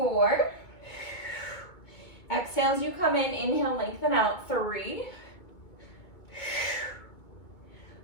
Exhale as you come in, inhale, lengthen out. 3,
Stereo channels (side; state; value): right; late; 2.2 ms